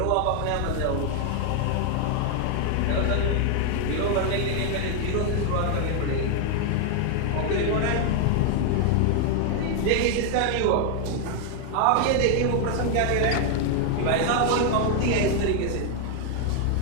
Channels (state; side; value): different; both; correlation 0.00